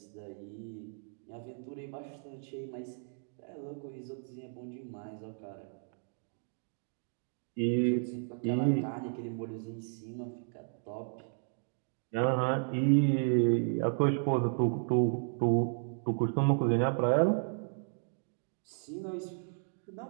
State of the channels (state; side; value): silent; left; 55 dB below the other